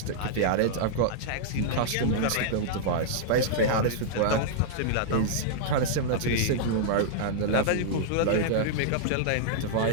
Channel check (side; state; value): both; different; correlation -0.01